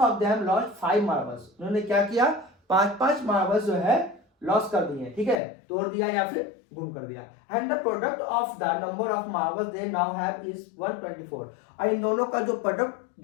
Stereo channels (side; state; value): right; drops out; at 5.4 s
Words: them lost 5 marbles. उन्होंने क्या किया, 5-5 मार्बल्स जो है लॉस कर दिए, ठीक है, तोड़ दिया या फिर गुम कर दिया। And the product of the number of marbles they now have is 124। और इन दोनों का जो प्रोडक्ट